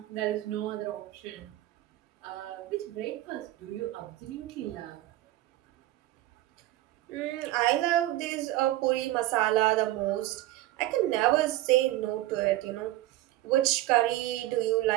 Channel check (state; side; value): quieter; left; 16.0 dB